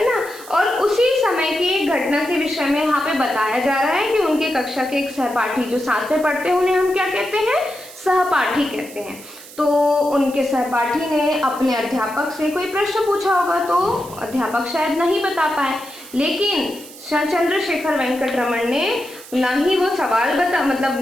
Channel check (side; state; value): right; noise; hiss, 17 dB below the sound